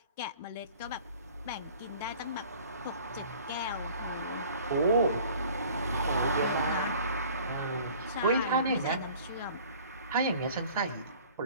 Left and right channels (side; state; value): both; inverted; correlation -0.49